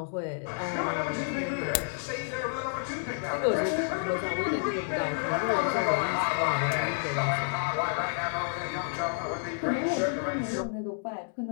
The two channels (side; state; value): right; silent; digital silence